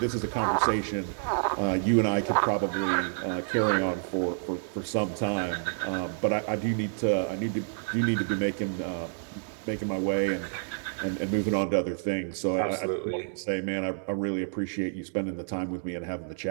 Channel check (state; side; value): silent; left; 59 dB below the other